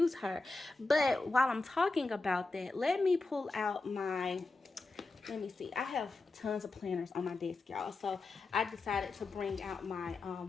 her. But while I'm talking about that, let me pull out my... Let me see. I have tons of planners on my desk, y'all. So I decided to bring out my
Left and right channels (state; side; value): quieter; right; 3.5 dB